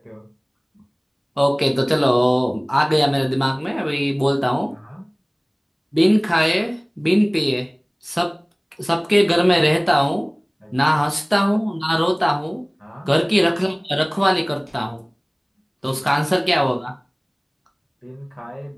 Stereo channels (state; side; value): identical; both; correlation 1.00